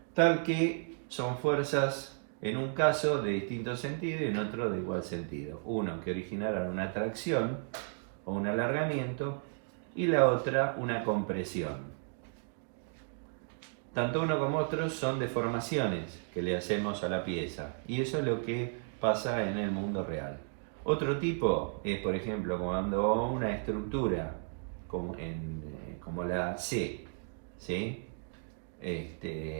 tal que son fuerzas en un caso de distinto sentido y en otro de igual sentido. Uno que originaron una tracción o un alargamiento y la otra una compresión. Tanto uno como otro son deformaciones que le hacemos a la pieza y eso es lo que pasa en el mundo real. Otro tipo es, por ejemplo, cuando una estructura como la C, ¿sí?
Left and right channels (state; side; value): silent; left; 55 dB below the other